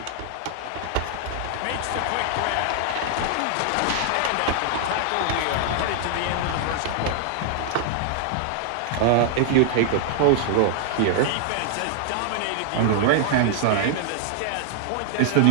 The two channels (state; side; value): different; both; correlation -0.01